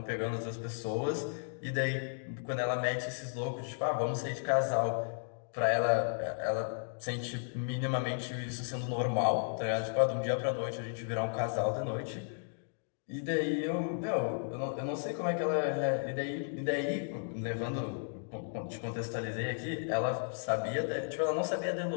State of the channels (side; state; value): right; silent; digital silence